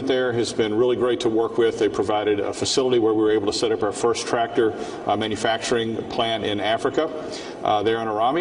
there has been really great to work with. They provided a facility where we were able to set up our first tractor manufacturing plant in Africa, there in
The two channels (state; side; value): identical; both; correlation 1.00